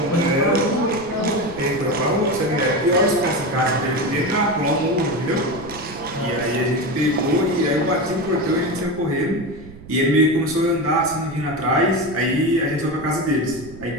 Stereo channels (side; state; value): right; noise; rumble, 17 dB below the sound